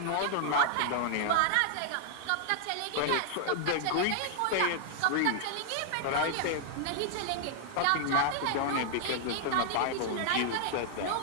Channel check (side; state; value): both; different; correlation -0.01